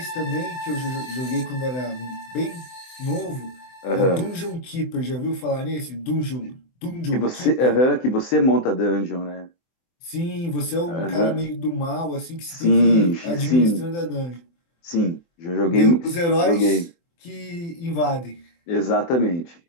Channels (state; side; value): late; right; 24 ms